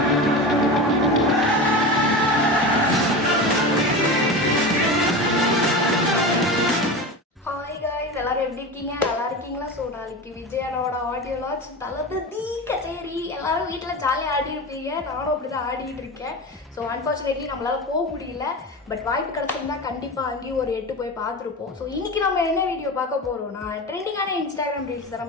எல்லாரும் எப்படி இருக்கீங்க? நல்லா இருக்கீங்களா? ஸோ நாளைக்கு விஜயனோட ஆடியோ லான்ச் தளபதி கச்சேரி எல்லாரும் வீட்டில் ஜாலியாக ஆடி இருப்பீங்க. நானும் அப்படி தான் ஆடிட்டு இருக்கேன். ஸோ அன்ஃபார்ச்சுனேட்லி நம்மளால போக முடியல. பட் வாய்ப்பு கிடச்சிருந்தா கண்டிப்பாக அங்கேயும் ஒரு 8 போய் பார்த்துருப்போம். ஸோ இன்னைக்கு நம்ம என்ன வீடியோ பார்க்க போகிறோம்னா ட்ரெண்டிங்கான இன்ஸ்டாகிராம் ரீல்ஸ் தான்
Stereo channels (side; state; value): both; normal; correlation 0.27